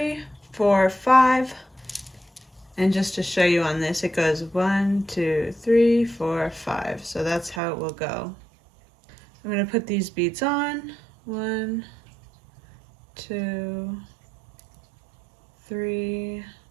4, 5. And just to show you on this, it goes 1, 2, 3, 4, 5. So that's how it will go. I'm going to put these beads on. 1, 2, 3,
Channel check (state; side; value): drops out; left; at 7.6 s